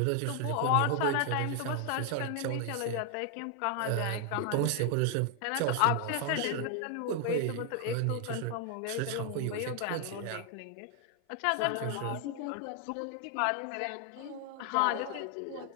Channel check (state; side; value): different; both; correlation 0.00